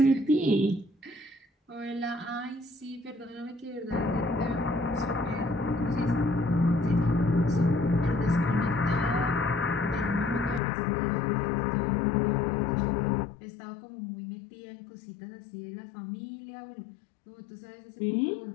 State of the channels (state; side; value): drops out; right; at 10.6 s